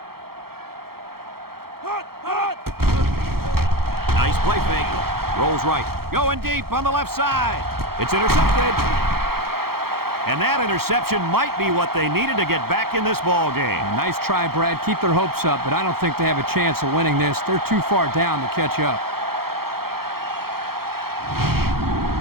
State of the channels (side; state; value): left; late; 0.94 ms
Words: Nice play fake. Rolls right. Going deep on the left side. It's intercepted. And that interception might be what they needed to get back in this ball game. Nice try, Brad. Keep their hopes up, but I don't think they have a chance of winning this. They're too far down to catch up.